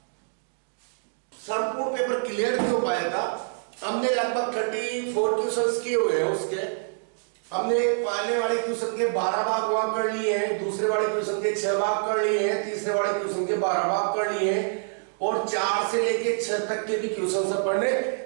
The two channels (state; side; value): silent; left; digital silence